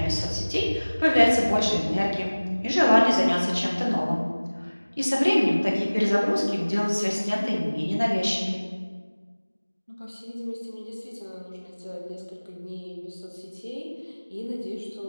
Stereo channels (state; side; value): inverted; both; correlation -1.00